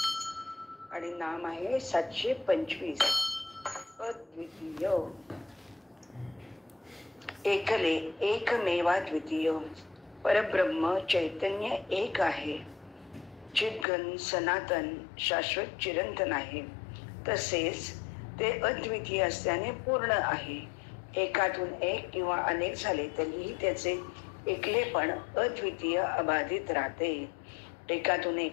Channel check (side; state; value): right; drops out; at 13.9 s